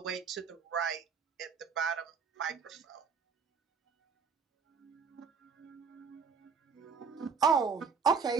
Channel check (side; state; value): left; quieter; 5.7 dB